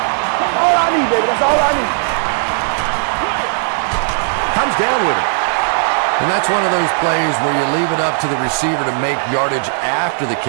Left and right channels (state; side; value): silent; left; digital silence